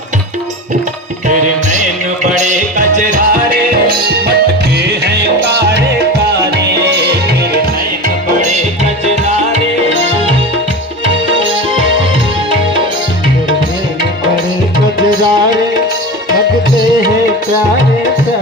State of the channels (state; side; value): normal; both; correlation 0.28